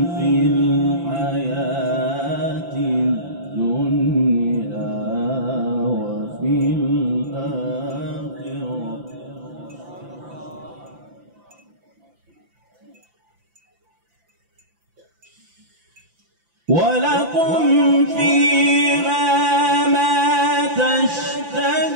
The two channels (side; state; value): left; late; 5.9 ms